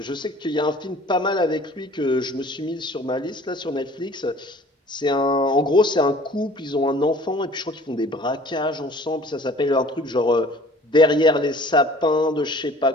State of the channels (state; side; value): normal; both; correlation 0.50